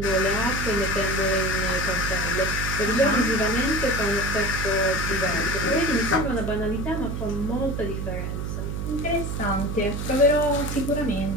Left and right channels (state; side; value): noise; right; hum, 3 dB below the sound